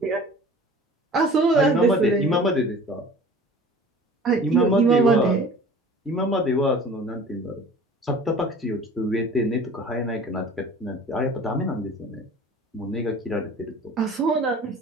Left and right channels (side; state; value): both; normal; correlation 0.44